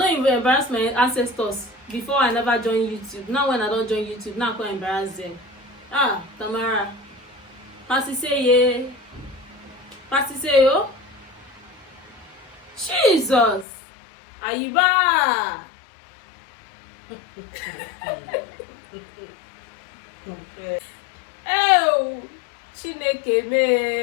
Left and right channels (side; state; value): right; drops out; at 13.7 s